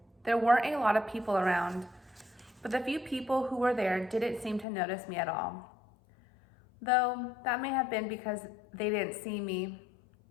There weren't a lot of people around, but the few people who were there didn't seem to notice me at all. Though that may have been because they didn't see me.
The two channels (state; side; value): drops out; right; at 4.7 s